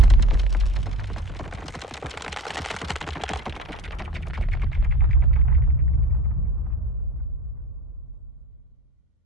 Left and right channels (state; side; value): normal; both; correlation 0.34